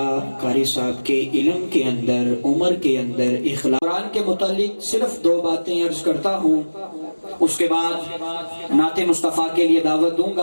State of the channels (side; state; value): both; inverted; correlation -1.00